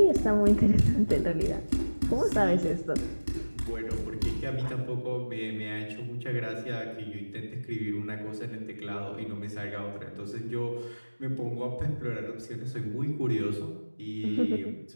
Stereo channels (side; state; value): both; inverted; correlation -1.00